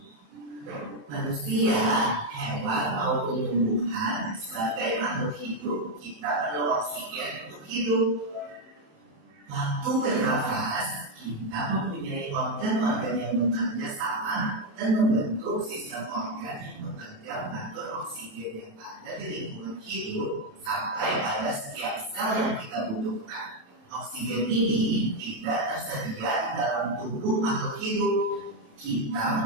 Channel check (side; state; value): left; late; 28 ms